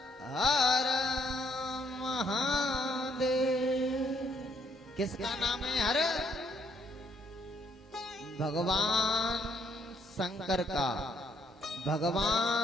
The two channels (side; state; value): both; normal; correlation 0.70